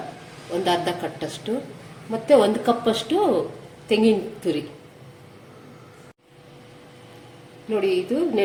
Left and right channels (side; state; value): both; identical; correlation 1.00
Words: ಒಂದು ಅರ್ಧ ಕಟ್ಟಷ್ಟು, ಮತ್ತು 1 ಕಪ್ಪಷ್ಟು ತೆಂಗಿನ ತುರಿ. ನೋಡಿ, ಇದು